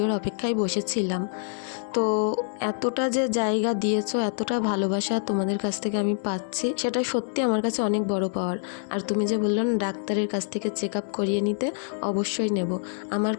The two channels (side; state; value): right; silent; 59 dB below the other